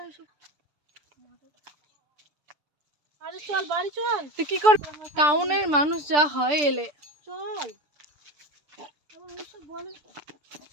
এসব। আরে চল বাড়ি চল। তুই কি কর, টাউনের মানুষ যা হয় এলে। চল ওইসব বলে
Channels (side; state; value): left; late; 6.8 ms